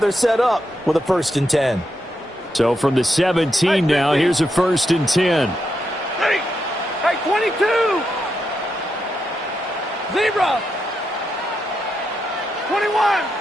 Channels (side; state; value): both; normal; correlation 0.83